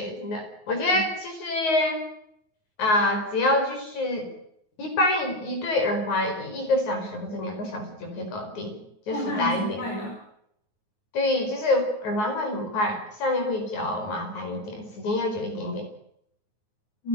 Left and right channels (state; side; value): late; right; 9.4 ms